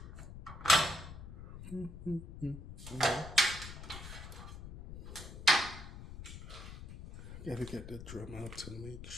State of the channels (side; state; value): left; noise; rumble, 11 dB below the sound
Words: Gotta get the drum out to make